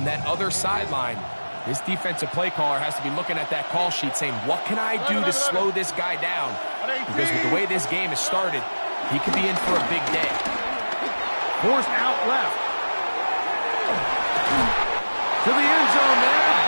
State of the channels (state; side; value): inverted; both; correlation -1.00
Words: that other sideline, this defensive play caller has to be looking at that call sheet saying, what can I do to slow this guy down? Because with the way this game has started, he could be in for a big day. Forced out left. To the end zone there,